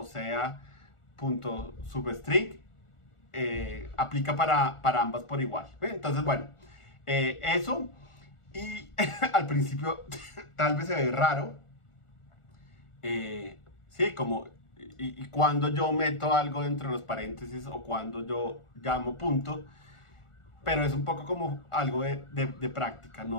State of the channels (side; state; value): right; late; 1.4 ms